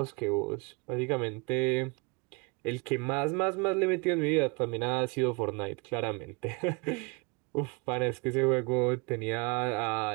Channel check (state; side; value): quieter; left; 30.2 dB